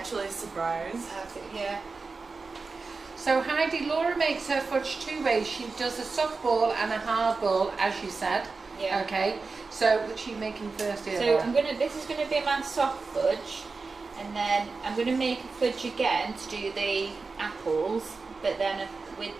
surprised. Yeah. So Heidi, Laura makes her fudge 2 ways. She does a soft ball and a hard ball, as you said. Yeah. Okay. So which are you making first here, So Laura? this is gonna be my soft fudge, and then I'm gonna make a fudge again to do the apples, but then with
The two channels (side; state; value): left; quieter; 4.2 dB